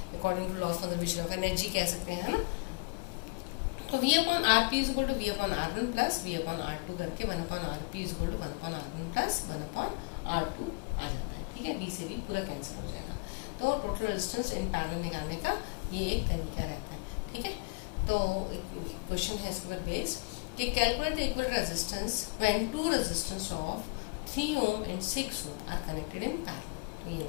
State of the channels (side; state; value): right; quieter; 30.1 dB